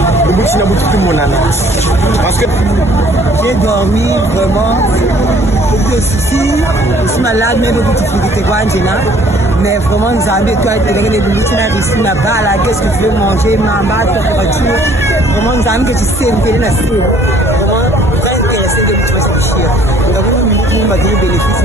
Parce que j'ai dormi vraiment, beaucoup de soucis, je suis malade, mais beaucoup de difficultés, mais vraiment nous avons toi les limites là-bas, qu'est-ce que tu veux manger, maman, température, vraiment nous avons que tu sais, vraiment très intéressé de nous faire. Nous avons des bénéfices,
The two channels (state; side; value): normal; both; correlation 0.58